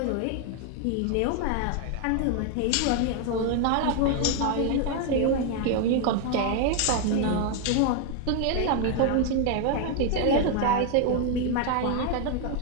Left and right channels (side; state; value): both; different; correlation 0.01